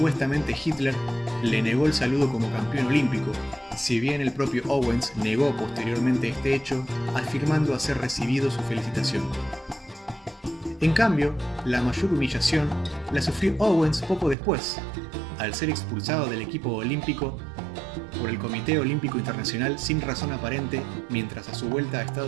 Hitler le negó el saludo como campeón olímpico, si bien el propio Owens negó posteriormente este hecho, afirmando haber recibido su felicitación. En cambio, la mayor humillación la sufrió Owens poco después, al ser expulsado del equipo olímpico por el Comité Olímpico Internacional sin razón aparente, mientras a su vuelta a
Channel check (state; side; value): drops out; left; at 14.4 s